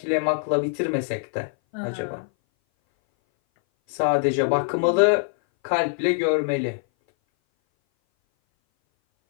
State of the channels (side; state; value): right; silent; 59 dB below the other